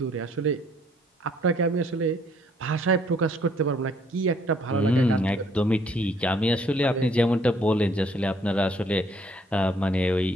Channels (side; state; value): both; normal; correlation 0.64